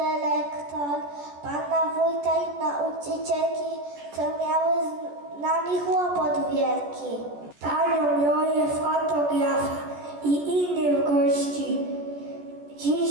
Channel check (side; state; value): left; late; 14 ms